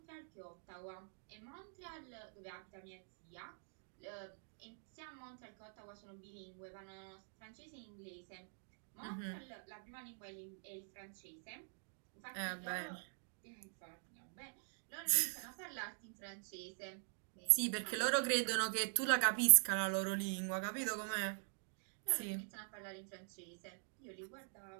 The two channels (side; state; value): left; silent; digital silence